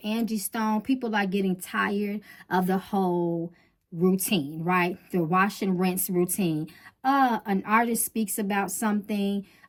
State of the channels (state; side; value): identical; both; correlation 1.00